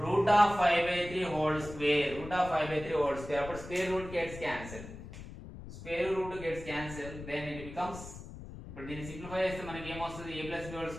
root of 5 by 3 whole square. root of 5 by 3 whole square అప్పుడు square root gets cancelled. square root gets cancelled then it becomes ఇప్పుడు దీన్ని simplify చేస్తే మనకి ఏమొస్తుంది a plus b whole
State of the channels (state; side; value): noise; left; rumble, 13 dB below the sound